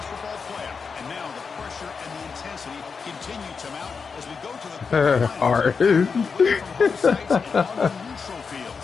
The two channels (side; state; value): right; quieter; 5.4 dB